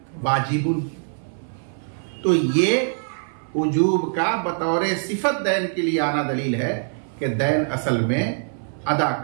वाजिबुन। तो ये वजूब का बतौर सिफत दैन के लिए आना दलील है कि दैन असल में अदा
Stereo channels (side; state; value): left; silent; 59 dB below the other